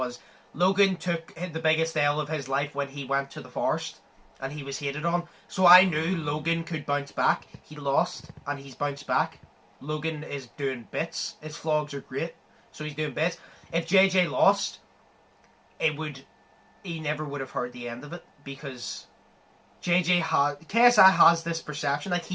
Logan took the biggest L of his life when he went to the forest. And he was hated on. So I knew Logan could bounce back. He lost, and he's bounced back. Logan is doing bits. His vlogs are great, so he's doing bits. If JJ lost, he never would have heard the end of it because KSI has this perception, like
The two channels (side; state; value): both; identical; correlation 1.00